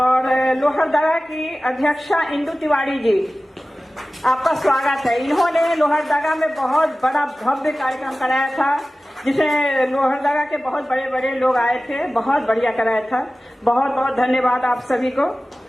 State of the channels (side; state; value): both; normal; correlation 0.96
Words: लोहरदगा की अध्यक्षा इंदु तिवारी जी, आपका स्वागत है। इन्होंने लोहरदगा में बहुत बड़ा भव्य कार्यक्रम कराया था, जिसमें लोहरदगा के बहुत बड़े बड़े लोग आए थे, बहुत बढ़िया कराया था, बहुत बहुत धन्यवाद आप सभी को।